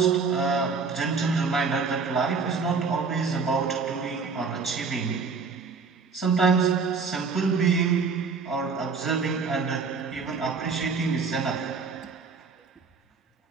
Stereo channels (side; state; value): left; quieter; 5.0 dB